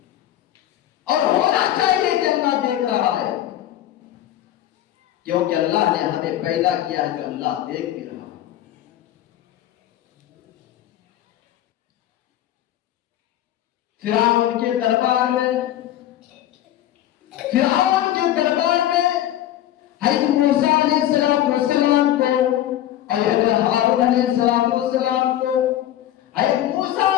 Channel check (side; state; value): right; quieter; 12.6 dB